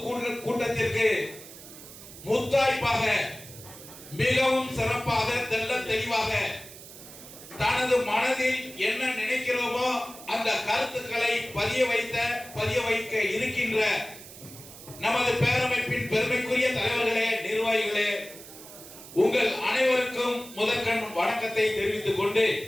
கூட்டத்திற்கு முத்தாய்ப்பாக மிகவும் சிறப்பாக தெல்ல தெளிவாக தனது மனதில் என்ன நினைக்கிறோமோ அந்த கருத்துக்களை பதிய வைக்க இருக்கின்ற நமது பேரமைப்பின் பெருமைக்குரிய தலைவர்களே, நிர்வாகிகளே, உங்கள் அனைவருக்கும் முதற்கண் வணக்கத்தை தெரிவித்துக் கொண்டு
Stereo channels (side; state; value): right; noise; hiss, 16 dB below the sound